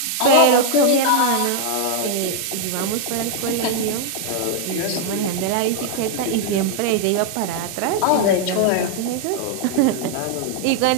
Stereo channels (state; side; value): different; both; correlation 0.00